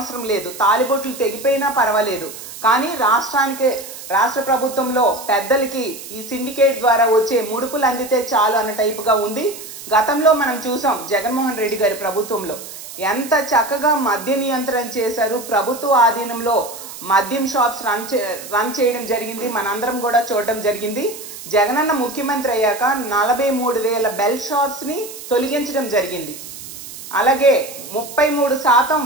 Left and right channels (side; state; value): right; noise; hiss, 13 dB below the sound